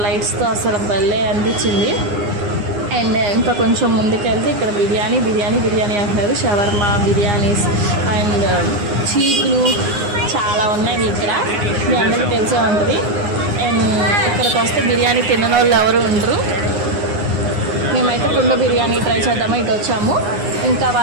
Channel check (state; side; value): late; left; 9.7 ms